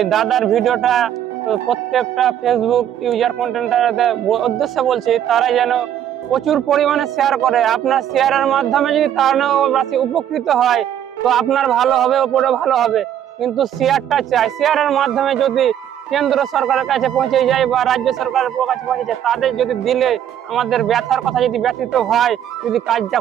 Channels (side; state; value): left; quieter; 10.3 dB